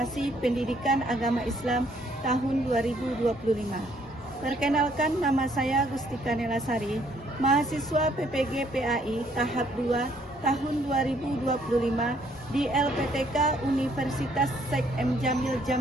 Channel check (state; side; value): normal; both; correlation 0.66